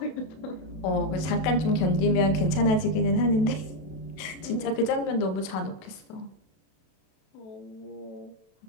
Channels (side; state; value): right; late; 32 ms